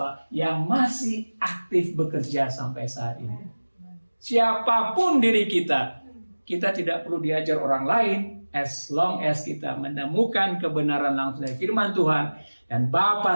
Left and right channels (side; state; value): both; inverted; correlation -1.00